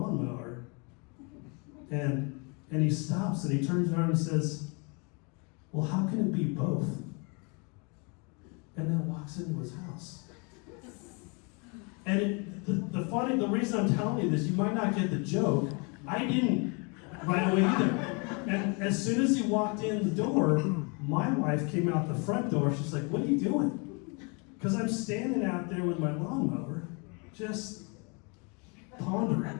and he stops and he turns around and he says, well, how can it be both? And then walks into his house. And the reason I'm telling you this, you might not get the joke, I didn't right away either. And as soon as he walked in the door, my wife came out the front door. She's like, what are you doing? Because I'm standing out there with my lawnmower, just pondering.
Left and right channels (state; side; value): quieter; right; 32.8 dB